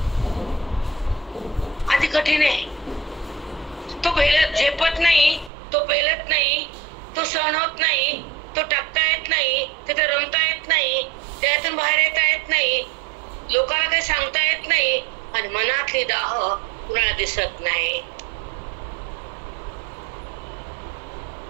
आधी कठीण आहे. तो झेपत नाही, तो पेलत नाही, तो सहन होत नाही, तो टाकता येत नाही, तिथे रमता येत नाही, त्यातून बाहेर येता येत नाही, लोकांना काही सांगता येत नाही, आणि मनातली दाह कुणाला दिसत नाही.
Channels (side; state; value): left; drops out; at 5.5 s